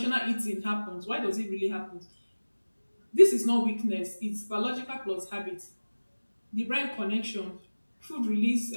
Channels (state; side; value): inverted; both; correlation -1.00